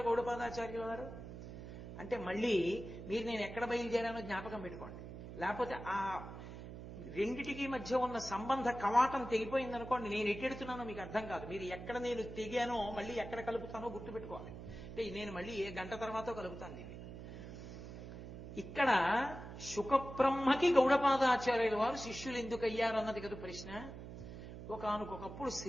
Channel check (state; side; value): noise; right; hum, 11 dB below the sound